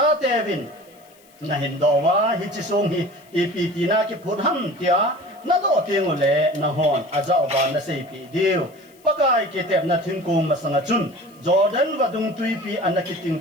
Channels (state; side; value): noise; left; hiss, 29 dB below the sound